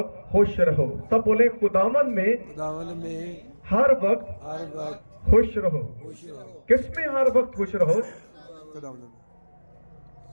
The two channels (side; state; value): both; inverted; correlation -1.00